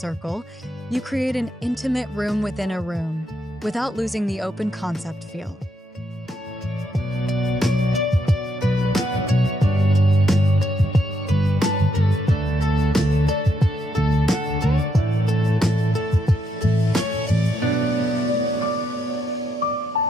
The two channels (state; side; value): normal; both; correlation 0.77